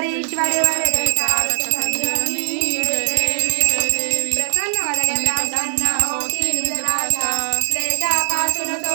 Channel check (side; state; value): left; silent; 60 dB below the other